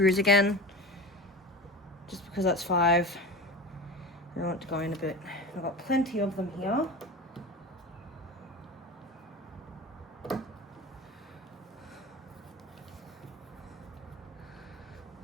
again, just because that's 5. I want it to go in a bit. I've got plenty of them here.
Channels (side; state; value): both; normal; correlation 0.30